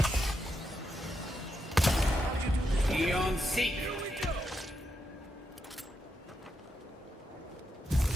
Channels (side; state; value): both; normal; correlation 0.84